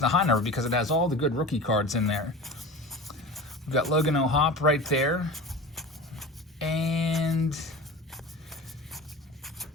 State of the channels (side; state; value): both; normal; correlation 0.33